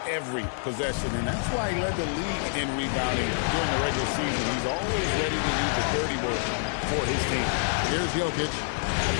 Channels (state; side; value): silent; right; digital silence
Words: every possession, and that's why he led the league in rebounding during the regular season. He's always ready to do the dirty work for his team. Here's Jokic